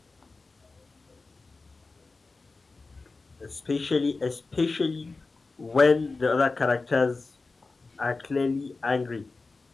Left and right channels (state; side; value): quieter; right; 3.7 dB